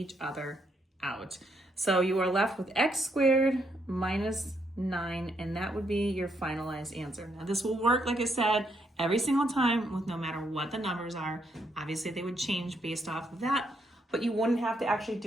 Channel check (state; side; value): normal; both; correlation 0.75